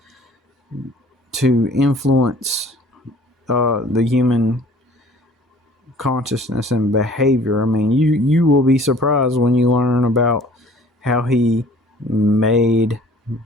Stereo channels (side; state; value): both; normal; correlation 0.52